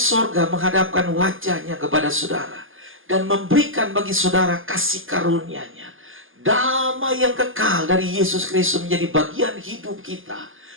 menghadapkan wajahnya kepada saudara dan memberikan bagi saudara kasih karunia-Nya. Damai yang kekal dari Yesus Kristus menjadi bagian hidup kita.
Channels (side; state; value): left; late; 0.59 ms